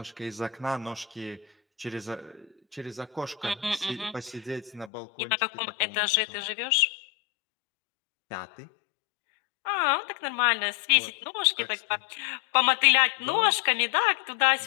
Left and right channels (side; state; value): right; drops out; at 4.9 s